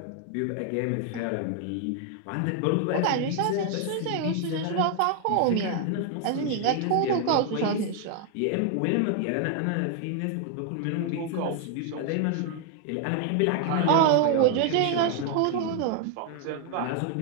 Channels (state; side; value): different; both; correlation 0.00